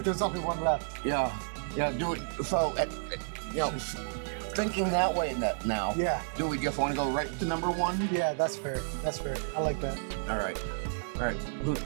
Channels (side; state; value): left; silent; digital silence